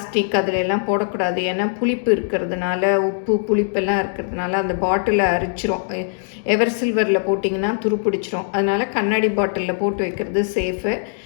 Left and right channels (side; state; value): right; silent; digital silence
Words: அதிலெல்லாம் போடக்கூடாது. ஏன்னா புளிப்பு இருக்கிறதுனால, உப்பு புளிப்பெல்லாம் இருக்கிறதுனால அந்த பாட்டிலை அரிச்சிரும். எவர் சில்வரில் போட்டிங்கன்னா துருப்பிடிச்சிரும். அதனால் கண்ணாடி பாட்டிலில் போட்டு வைக்கிறது சேஃபு.